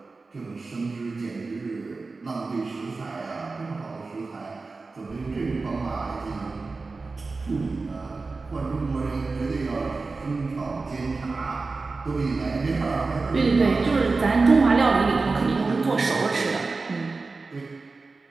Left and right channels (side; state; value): left; quieter; 3.9 dB